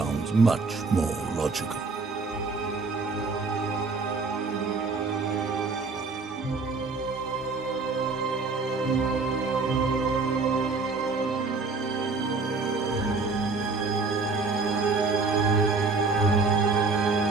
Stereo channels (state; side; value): quieter; left; 4.0 dB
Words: much more logical.